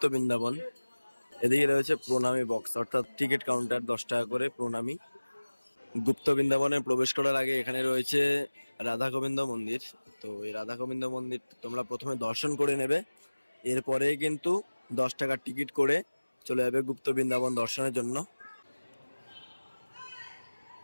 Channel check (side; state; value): both; inverted; correlation -1.00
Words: বৃন্দাবন। এদিকে রয়েছে প্রণামী বক্স, অর্থাৎ টিকিট কাউন্টার, 10 টাকা করে প্রণামী। গুপ্ত বৃন্দাবনে প্রবেশ করার আগে এখানে রয়েছে রাধা গোবিন্দ মন্দির। তো এই রাধা গোবিন্দ মন্দির তোমরা প্রথমে দর্শন করে নেবে, এরপরে কিন্তু 10 টাকার টিকিট করে চলে যাবে গুপ্ত বৃন্দাবন দর্শনের জন্য।